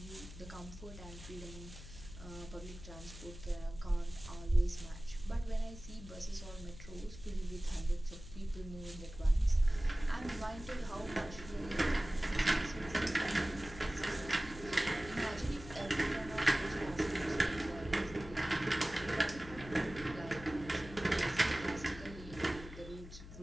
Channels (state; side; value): noise; left; hum, 14 dB below the sound